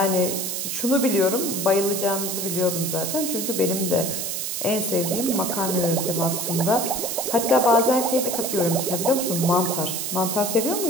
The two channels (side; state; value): right; noise; hiss, 3 dB below the sound